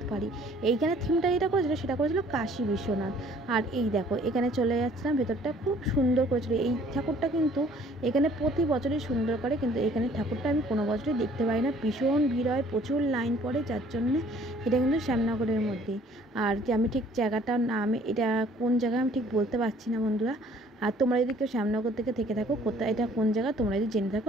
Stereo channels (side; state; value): both; normal; correlation 0.57